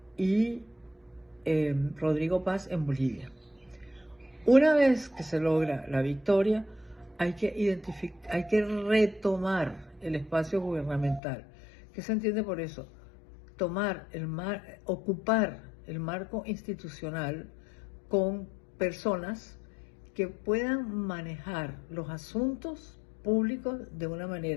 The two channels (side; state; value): right; drops out; at 11.2 s